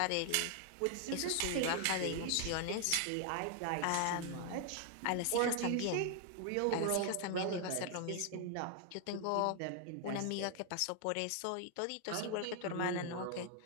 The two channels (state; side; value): different; both; correlation 0.00